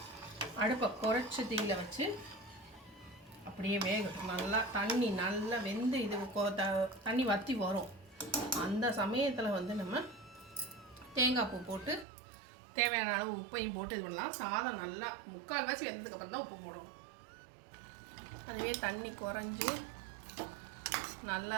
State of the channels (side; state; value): left; drops out; at 12.1 s